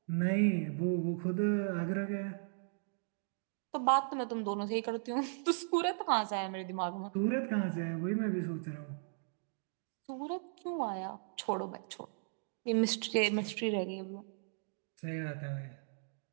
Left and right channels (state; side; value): silent; left; digital silence